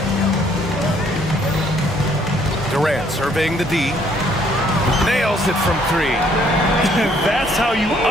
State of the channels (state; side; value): normal; both; correlation 0.65